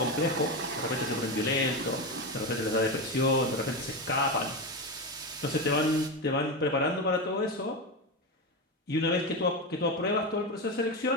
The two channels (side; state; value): both; normal; correlation 0.16